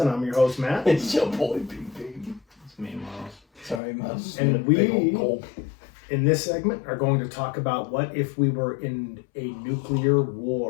I'm your host, Matt. It's your boy, BB. It's me, Myles. Sorry, Myles. And we, in this segment, are going to talk about what if we were in a nuclear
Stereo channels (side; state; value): right; drops out; at 3.8 s